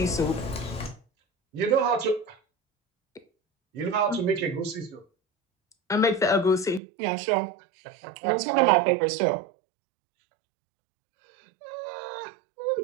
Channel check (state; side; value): drops out; left; at 6.8 s